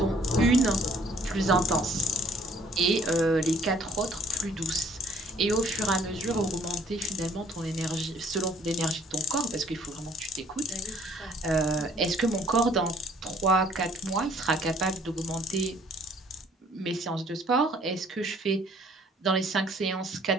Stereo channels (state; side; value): normal; both; correlation 0.58